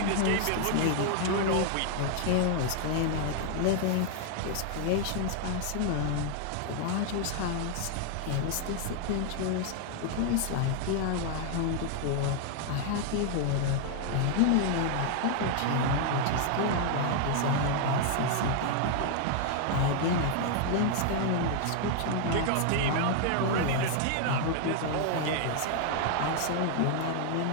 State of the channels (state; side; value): different; both; correlation 0.00